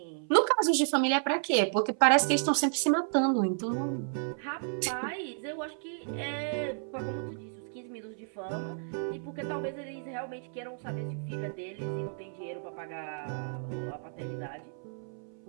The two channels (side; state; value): left; silent; 57 dB below the other